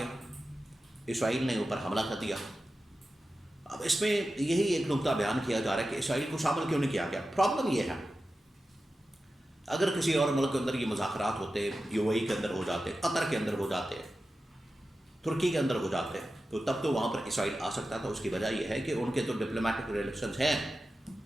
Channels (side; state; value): both; normal; correlation 0.93